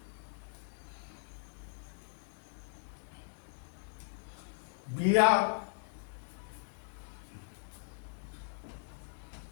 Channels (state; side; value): silent; right; digital silence